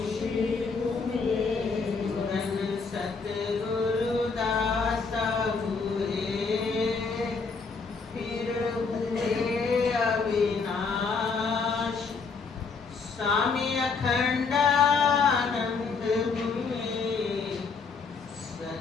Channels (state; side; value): quieter; right; 4.8 dB